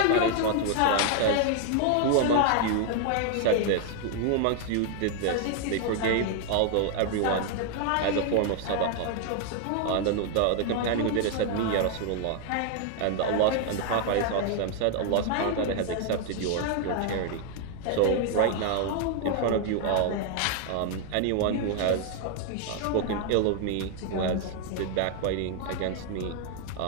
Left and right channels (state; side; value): different; both; correlation 0.00